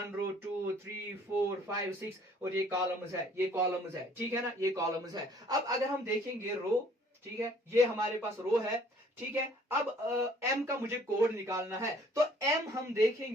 रो 2 3 4 5 6, और ये कॉलम्स है, ये कॉलम्स है, ठीक है ना, ये कॉलम्स है। अब अगर हम देखेंगे रो, ठीक है, ये हमारे पास रो है, ठीक है। अब एम का मुझे कोड निकालना है, तो एम हम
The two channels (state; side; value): normal; both; correlation 0.58